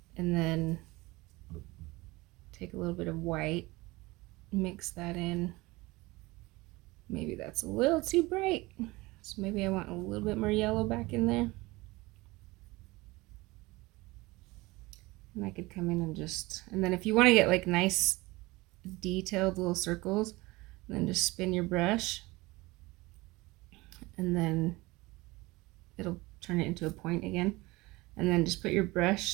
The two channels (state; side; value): quieter; left; 21.8 dB